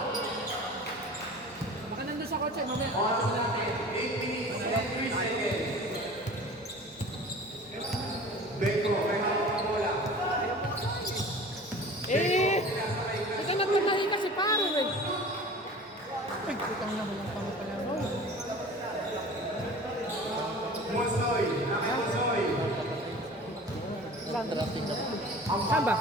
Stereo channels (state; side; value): normal; both; correlation 0.41